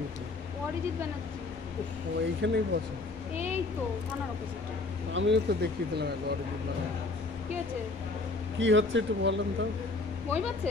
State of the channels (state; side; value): quieter; right; 3.4 dB